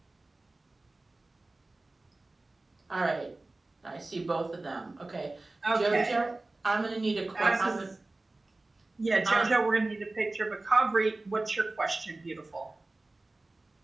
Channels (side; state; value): left; quieter; 3.0 dB